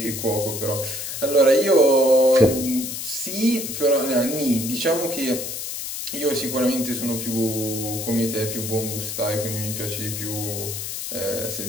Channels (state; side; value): noise; left; hiss, 6 dB below the sound